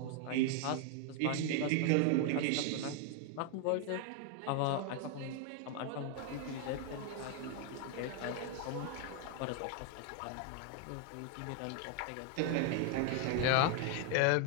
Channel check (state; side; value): different; both; correlation 0.00